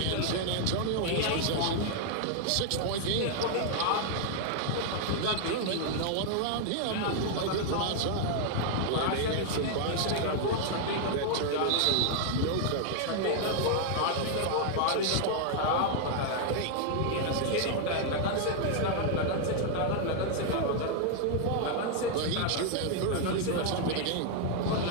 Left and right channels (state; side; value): different; both; correlation 0.00